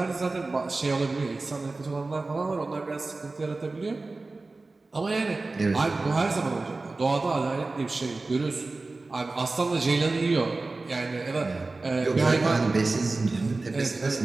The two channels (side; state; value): left; quieter; 3.4 dB